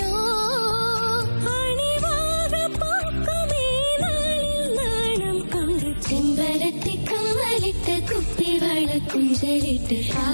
അണിവാക പൂക്കുമീ നാളിൽ നാണം കൊണ്ട് ചെമ്പരത്തിക്കമ്മലിട്ട് കുപ്പിവള കൊഞ്ചലിട്ട്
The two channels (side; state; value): both; inverted; correlation -1.00